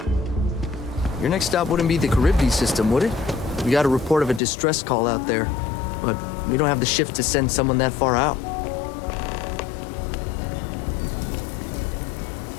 Your next stop wouldn't be the Charybdis system, would it? We got a report of a distress call out there, but we don't have the shift to send someone that far out.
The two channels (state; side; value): drops out; right; at 4.4 s